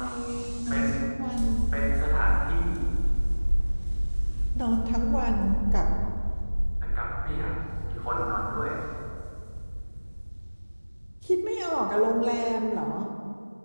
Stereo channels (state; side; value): inverted; both; correlation -1.00